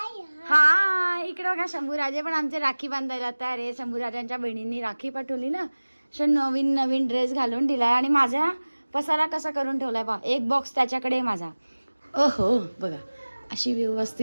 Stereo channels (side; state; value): both; inverted; correlation -1.00